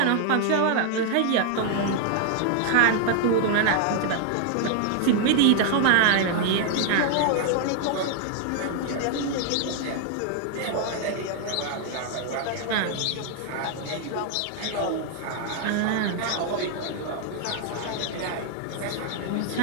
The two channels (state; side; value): different; both; correlation 0.00